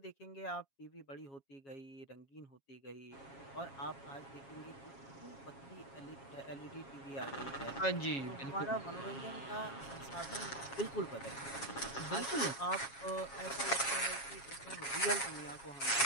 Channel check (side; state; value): right; late; 7.3 ms